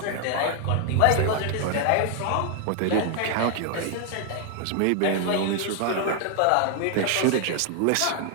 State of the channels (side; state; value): both; different; correlation 0.00